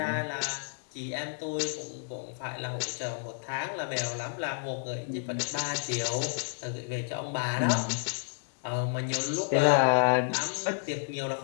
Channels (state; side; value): silent; right; 57 dB below the other